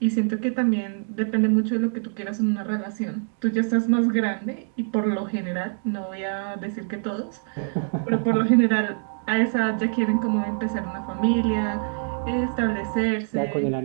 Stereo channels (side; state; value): left; silent; 57 dB below the other